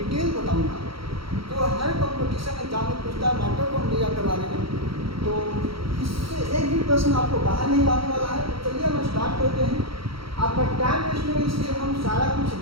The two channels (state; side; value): late; left; 0.75 ms